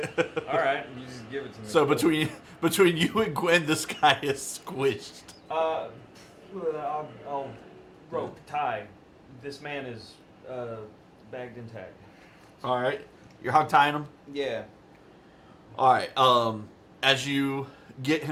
it. All right, you just give it to me. So between you and Gwen, this guy is squished. I'll rope tie. This man is bagged and tagged. All right, you're hog tying him. Yeah. All right. As you get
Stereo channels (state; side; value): identical; both; correlation 1.00